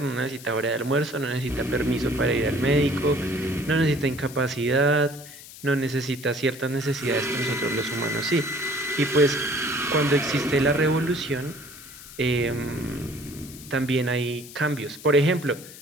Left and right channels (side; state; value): left; noise; hiss, 16 dB below the sound